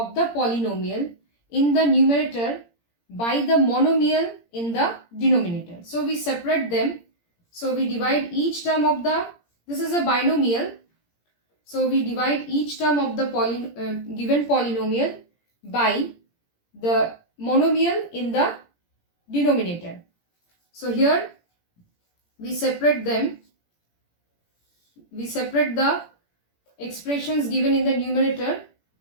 the polynomial in the numerator by the monomial in the denominator. So we separate them. So we divide each term of the, this is a binomial. So we divide each term of the given polynomial by the monomial in the denominator. So here we separate them. We separate the expressions given in the numerator.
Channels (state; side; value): late; right; 17 ms